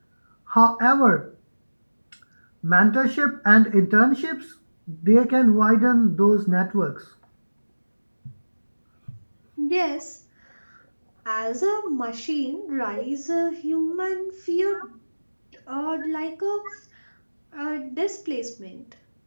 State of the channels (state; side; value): inverted; both; correlation -1.00